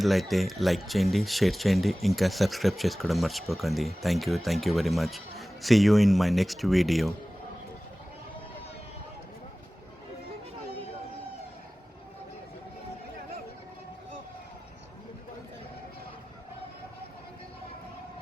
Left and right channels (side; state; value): both; normal; correlation 0.97